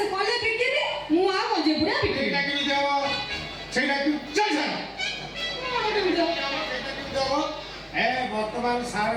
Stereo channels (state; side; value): identical; both; correlation 1.00